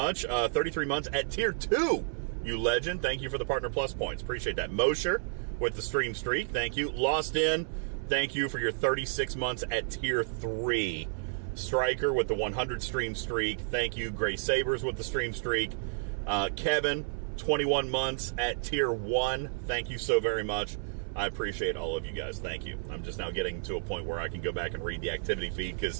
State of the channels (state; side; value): silent; left; 57 dB below the other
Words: 33 months at tier 2, you legend. Thank you for the Partner Plus points. Appreciate that. Mosher with the stream streak. Thank you. Lost In, thank you for your 36 months at tier 3. Striker with the 100 stream streak. Thank you. Gray Sabers with the stream streak. Kevin, 21 months at tier 1. Thank you so very much. I appreciate all of you guys. Thank you. I'm just now getting to a point where I can go back and read the activity feed